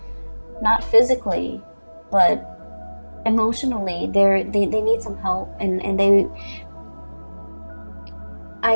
Not physically, but emotionally. They need some help. And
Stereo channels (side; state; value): both; inverted; correlation -1.00